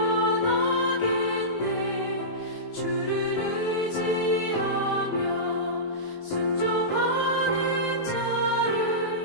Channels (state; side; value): late; right; 19 ms